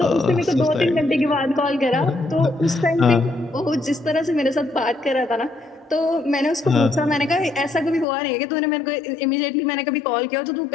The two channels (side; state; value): right; drops out; at 8.1 s